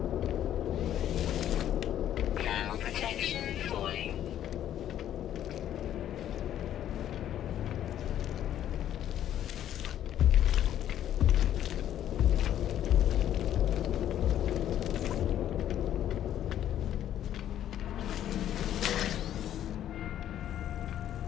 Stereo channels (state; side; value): quieter; right; 11.2 dB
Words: Thermal protection falling.